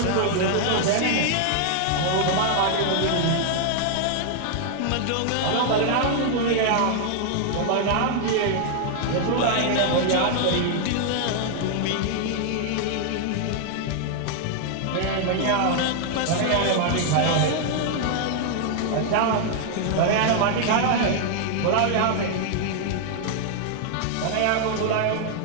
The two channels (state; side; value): different; both; correlation 0.00